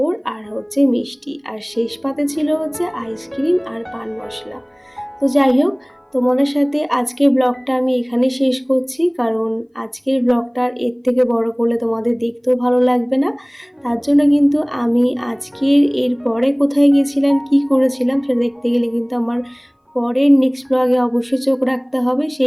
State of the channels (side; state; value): both; identical; correlation 1.00